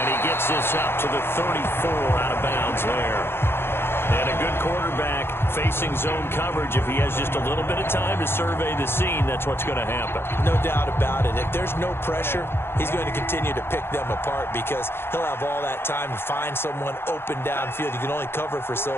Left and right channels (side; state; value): right; late; 0.11 ms